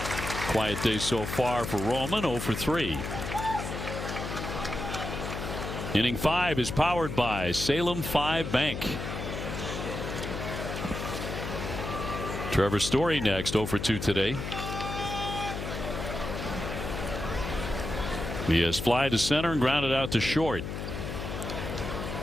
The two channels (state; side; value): noise; left; hum, 5 dB below the sound